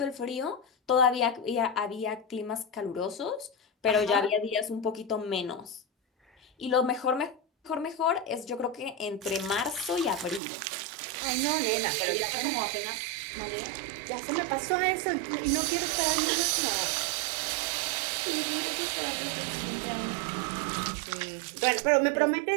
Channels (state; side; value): drops out; left; at 10.4 s